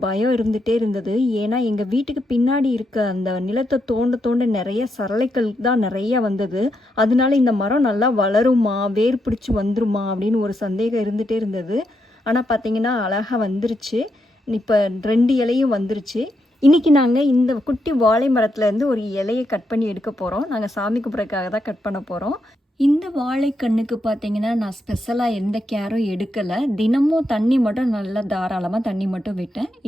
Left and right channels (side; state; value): both; normal; correlation 0.81